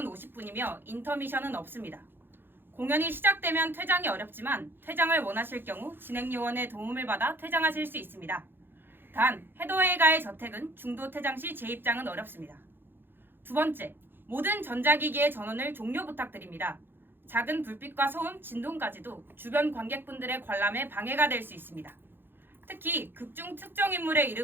50분이며 인터미션은 없습니다. 공연이 시작되면 퇴장이 어렵지만 퇴장을 원하실 경우 진행요원의 도움을 받아 퇴장하실 수 있습니다. 단, 헤더웨이가의 저택은 중도 퇴장 시 재입장은 어렵습니다. 두 번째, 모든 전자기기의 전원을 종료 부탁드립니다. 작은 불빛과 소음, 진동까지도 주변 관객분들의 관람에 방해가 될 수 있습니다. 특히 극중 특정 인물의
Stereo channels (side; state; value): left; late; 0.10 ms